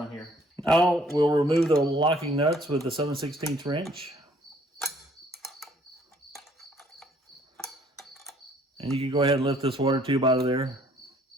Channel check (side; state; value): both; normal; correlation 0.61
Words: here. Now we'll remove the locking nuts with the 7/16 wrench. And you can go ahead and lift this water tube out of there.